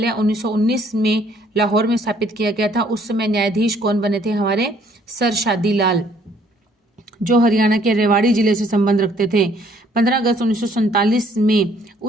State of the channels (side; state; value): both; normal; correlation 0.62